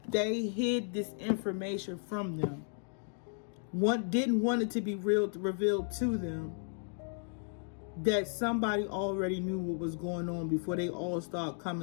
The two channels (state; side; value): silent; right; 55 dB below the other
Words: they hid this information from them. Didn't want it to be revealed to them that somebody already knew what was going on before they all start